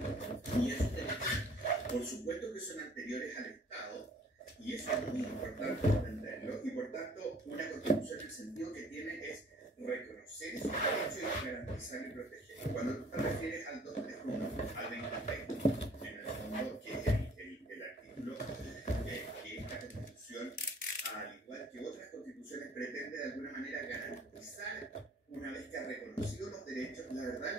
Y esos derechos, por supuesto que son anteriores al Estado, y eso es muy importante entenderlo, y por tanto una constitución en el sentido que tiene es reconocer esos derechos y garantizar y proteger. Cuando tú te refieres al 231, al 2020, en el fondo, que es el artículo que esta constitución, al igual que otras constituciones, pretende de alguna manera garantizar, una vez que ha reconocido los derechos, la verdad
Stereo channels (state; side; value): normal; both; correlation 0.55